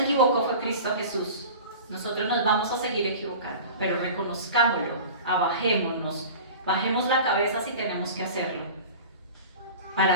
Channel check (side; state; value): both; inverted; correlation -0.37